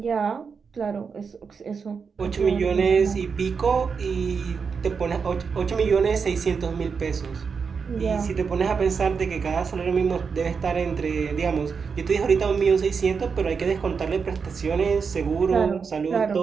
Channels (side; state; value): left; quieter; 5.6 dB